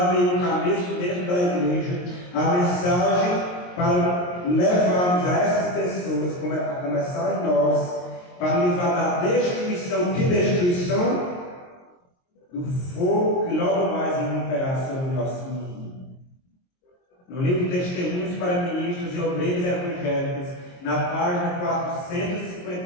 dentro da igreja, a mensagem para levarmos a essas pessoas, a começar em nós, para livrar da destruição. Que destruição? Do fogo que logo mais irromperá sobre o nosso mundo. No livro Testemunhos para Ministros e Obreiros Evangélicos, na página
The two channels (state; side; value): late; right; 22 ms